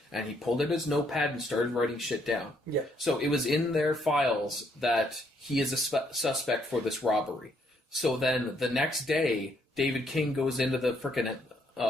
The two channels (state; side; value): normal; both; correlation 0.71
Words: and he pulled out his notepad and started writing shit down. Yeah. So it was in their files that he is a suspect for this robbery. So then the next day, David King goes into the frickin'